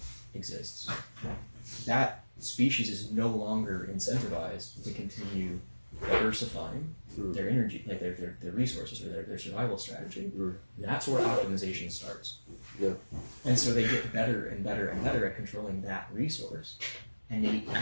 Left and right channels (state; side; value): inverted; both; correlation -1.00